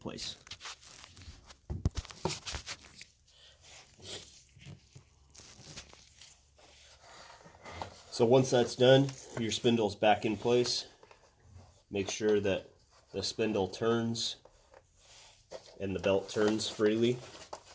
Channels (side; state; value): both; identical; correlation 1.00